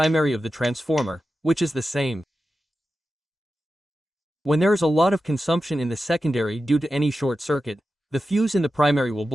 of the transformer, which is the same. When there is a lot of consumption in the secondary due to any short circuit, the fuse in the primary will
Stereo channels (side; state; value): both; normal; correlation 0.92